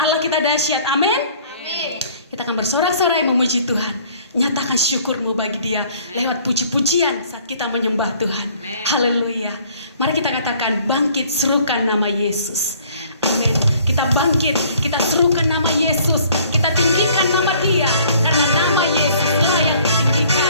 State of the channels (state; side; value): inverted; both; correlation -0.56